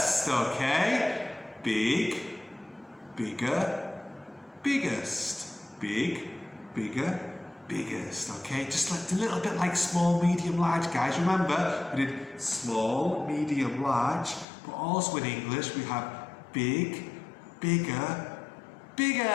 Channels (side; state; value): right; drops out; at 14.5 s